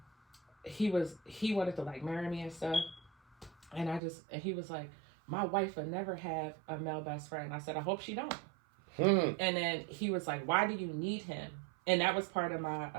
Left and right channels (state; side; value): drops out; left; at 4.0 s